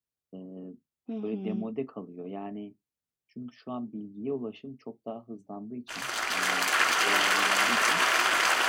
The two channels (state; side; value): identical; both; correlation 1.00